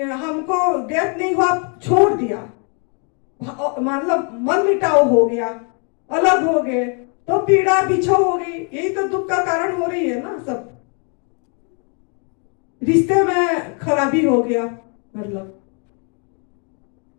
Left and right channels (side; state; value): right; quieter; 38.4 dB